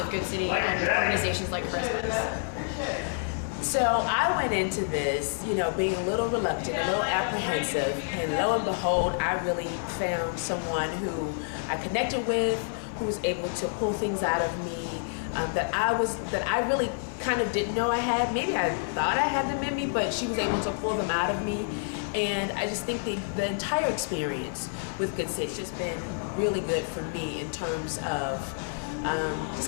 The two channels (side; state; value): right; silent; digital silence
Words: Goodcity and organizations like Charisma's. So I went into this, being a little reluctant, a little apprehensive, and lo and behold, I really found someone who I connected with, who was able to pull things out of me that I really kind of didn't know I had. Maybe I thought I had them in me, but she was able to pull them out of me. And I just think the entire experience with Goodcity has just been really good for me in terms of